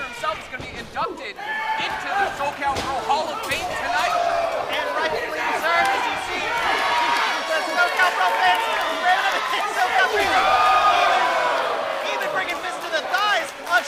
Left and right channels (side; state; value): both; identical; correlation 1.00